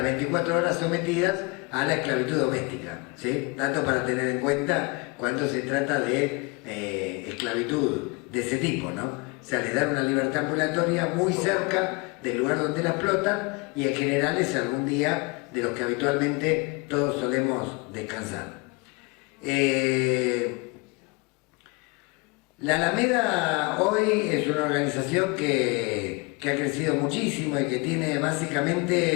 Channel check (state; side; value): quieter; right; 28.8 dB